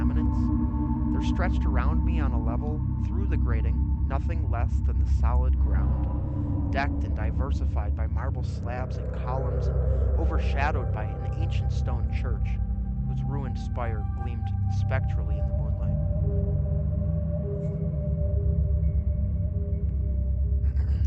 There stretched around me on a level, through the grating, nothing less than the solid ground, decked and diversified by marble slabs and columns and overshadowed by an ancient stone church, whose ruined spire gleamed spectrally in the moonlight.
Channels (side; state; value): both; identical; correlation 1.00